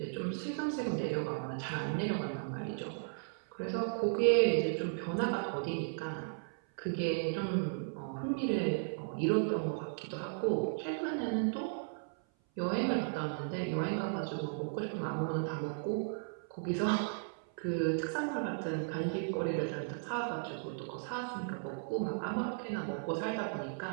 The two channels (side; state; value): left; silent; 54 dB below the other